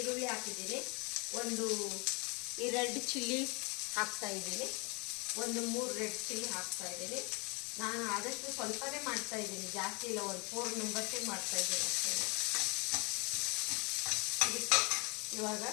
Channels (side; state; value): right; quieter; 30.5 dB